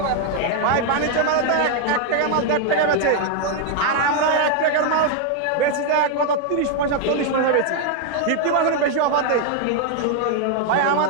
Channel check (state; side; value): different; both; correlation 0.00